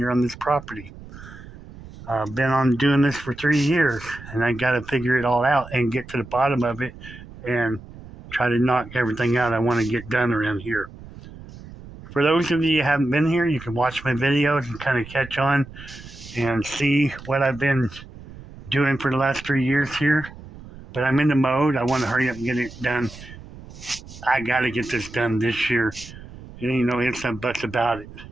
on this property. I've been on doing this for 3 years, and I got to figure it all out and get to the bottom of it and try to knock everything out I want to get done around here. For those of you who haven't been here, you can watch my videos and kind of catch on and see what I've been doing for the last 3 years here. But I'm in the mode. I want to hurry up and get it done. I got to get this done this year. There ain't no ifs and buts about it.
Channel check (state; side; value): noise; right; rumble, 16 dB below the sound